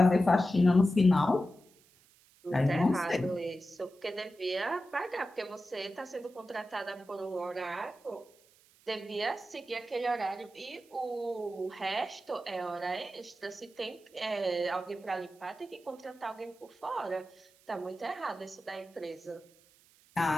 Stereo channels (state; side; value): noise; right; hiss, 29 dB below the sound